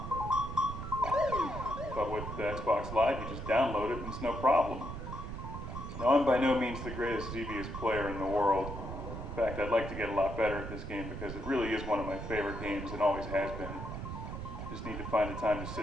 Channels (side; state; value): right; noise; rumble, 7 dB below the sound